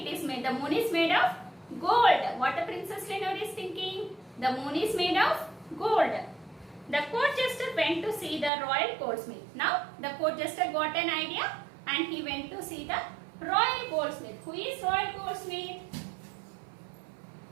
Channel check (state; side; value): drops out; left; at 8.5 s